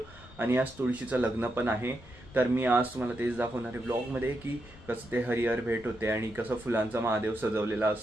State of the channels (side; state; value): left; noise; rumble, 21 dB below the sound